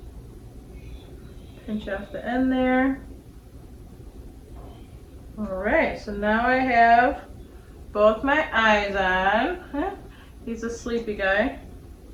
Pinch off the end there. Alright, so now I have both my eyes on. He's a sleepy guy.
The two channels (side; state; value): both; identical; correlation 1.00